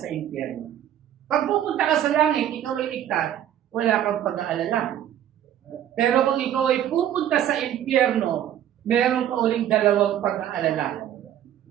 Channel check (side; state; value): left; quieter; 10.9 dB